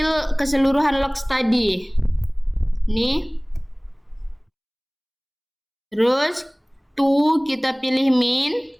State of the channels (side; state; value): both; identical; correlation 1.00